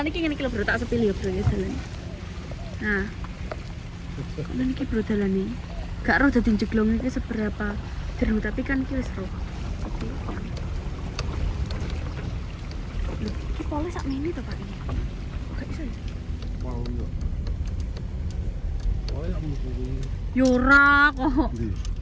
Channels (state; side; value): identical; both; correlation 1.00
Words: iki ngene iki lho, Bro, tak sepil ya, Bro, ya dalan. Nah. Dalan iki Bro dalane. Gak roh dadi jeglong iki seberapa jeru, tapi kan iki wis roh. Oke. Lho, iki pole sak mene to, Pak. Gak iso ya? Wow, yo. Oh, ya mesti. Yora kok.